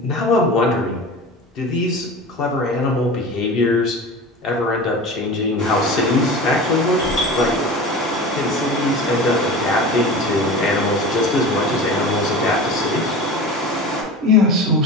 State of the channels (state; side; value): normal; both; correlation 0.33